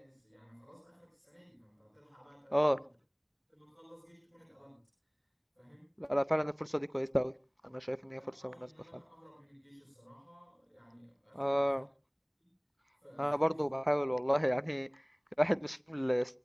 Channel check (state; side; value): identical; both; correlation 1.00